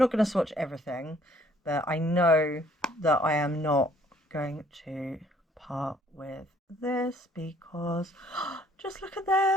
going to swatch everything, but I know that I am not going to part with this because just look at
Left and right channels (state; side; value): normal; both; correlation 0.61